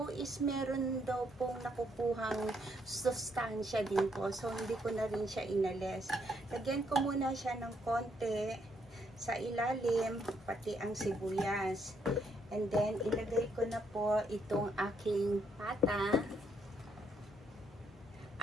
is meron daw pong nakukuhang sustansya din po. So, hindi ko na rin siya inalis. Lagyan ko muna siya ng konti sa ilalim, pati ang sibuyas. And then, ilagay ko na po itong aking pata.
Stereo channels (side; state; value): both; normal; correlation 0.73